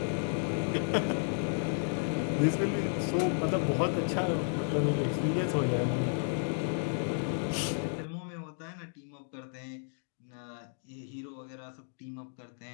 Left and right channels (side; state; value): right; silent; digital silence